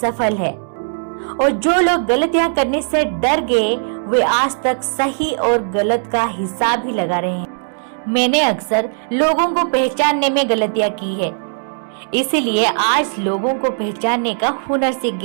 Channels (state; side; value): silent; left; digital silence